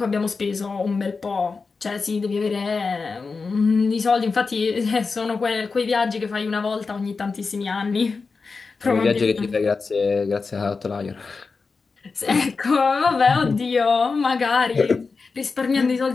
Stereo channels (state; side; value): quieter; right; 4.5 dB